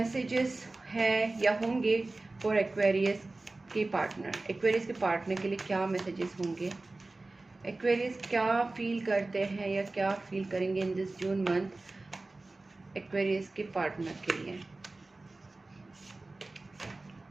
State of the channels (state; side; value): quieter; left; 3.1 dB